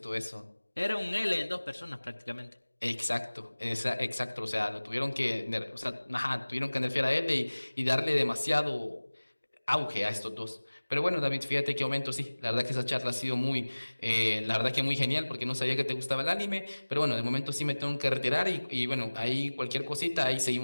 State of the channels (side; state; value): both; inverted; correlation -1.00